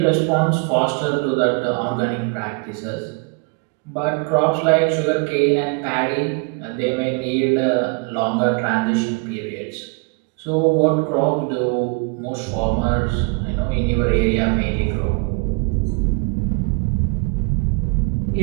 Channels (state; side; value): quieter; left; 32.4 dB